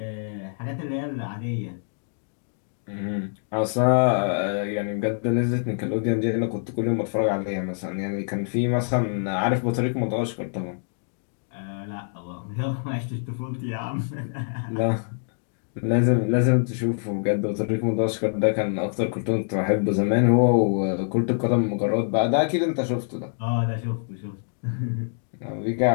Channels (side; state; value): right; silent; digital silence